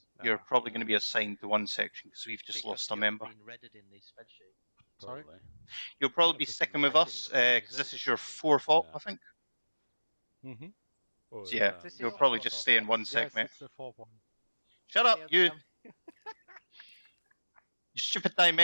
yours. you're Ah, probably yeah. going to be assigned to one section because we've just lost a member. Been redded in the spreadsheet. Sorry? You'll probably be Just sticking with read us it, because this is your fourth op, Yeah. I think. Mm-hmm. Or, So yeah, This is you'll your probably fourth just op, stay in yeah? one sec, Yes, mate. it's the fourth one. Shut up, Okay, you! okay. You stupid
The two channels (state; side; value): inverted; both; correlation -1.00